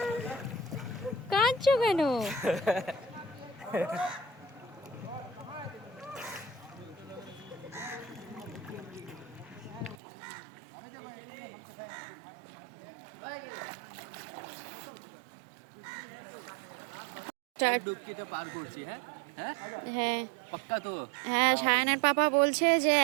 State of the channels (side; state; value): left; drops out; at 10.0 s